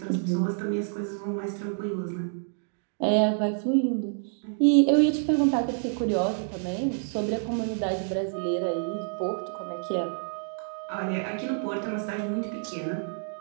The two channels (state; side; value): silent; left; digital silence